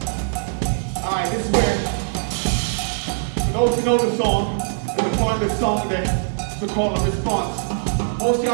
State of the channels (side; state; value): left; silent; digital silence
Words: Alright, this is where those who know the song, gonna find the song that's the call and response. Most